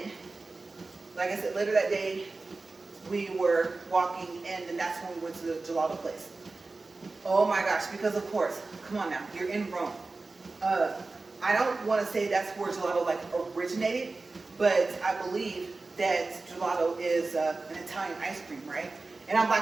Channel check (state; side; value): quieter; left; 3.6 dB